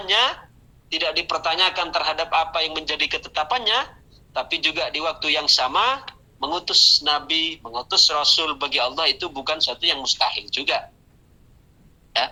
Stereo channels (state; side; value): identical; both; correlation 1.00